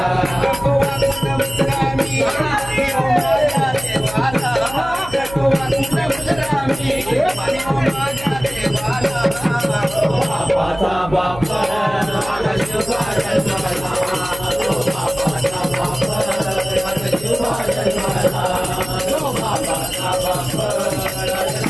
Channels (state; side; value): noise; right; hum, 15 dB below the sound